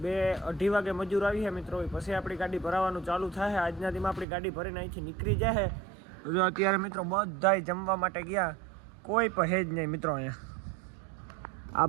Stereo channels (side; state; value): left; drops out; at 4.2 s